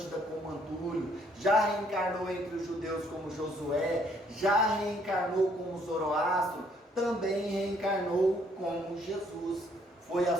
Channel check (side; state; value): both; normal; correlation 0.66